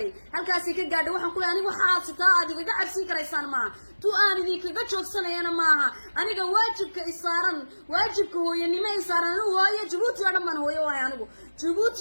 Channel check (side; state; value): both; inverted; correlation -1.00